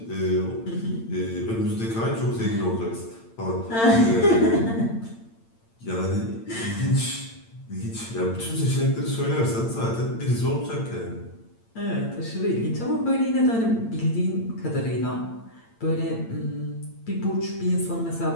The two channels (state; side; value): late; right; 8.8 ms